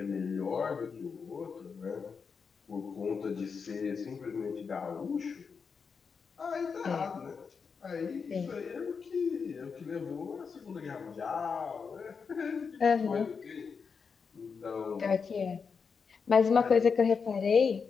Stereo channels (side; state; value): right; quieter; 5.7 dB